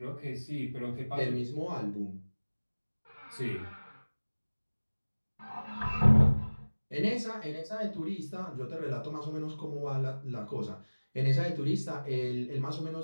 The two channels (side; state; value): both; inverted; correlation -1.00